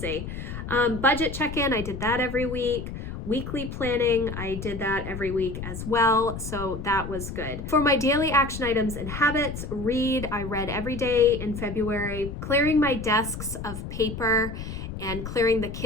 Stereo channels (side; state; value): left; noise; rumble, 8 dB below the sound